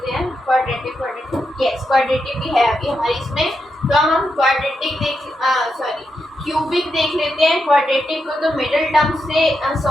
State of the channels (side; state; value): both; normal; correlation 0.85